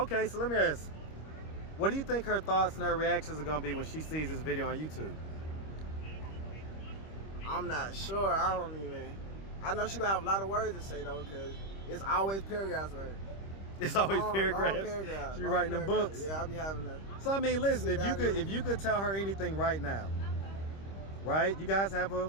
So let me ask. What do you think her thoughts and her reactions are going to be when she sees this video on YouTube? I'm not sure. I know she going to have a lot of words to say, though, because it's always paragraphs with her. It's always paragraphs? Long paragraphs. She writing them books? Yeah, I'll be having to. So, I mean, listen, if you could tell her anything right now, right? You guys have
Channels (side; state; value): right; late; 25 ms